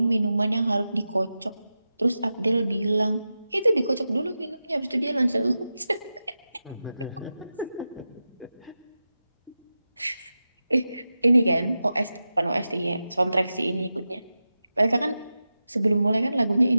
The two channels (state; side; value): inverted; both; correlation -0.93